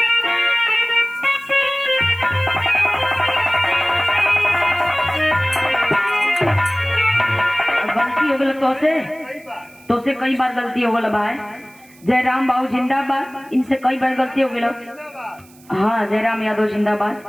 गलती हो गल तो से कई बार गलती हो गल भाई। जयराम बाबू जिंदाबाद, इनसे कई बार गलती हो गल। हाँ जयराम यादव जिंदाबाद।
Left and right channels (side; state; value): right; noise; hiss, 27 dB below the sound